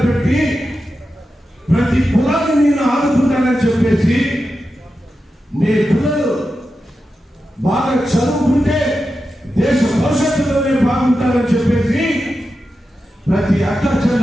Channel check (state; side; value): normal; both; correlation 0.90